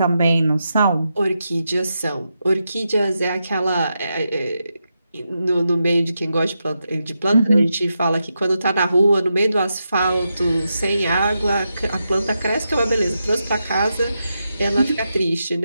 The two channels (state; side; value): inverted; both; correlation -0.86